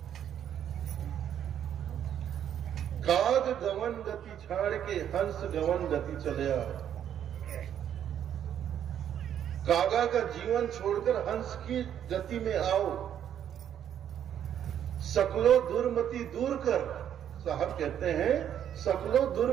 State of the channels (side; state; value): left; quieter; 9.7 dB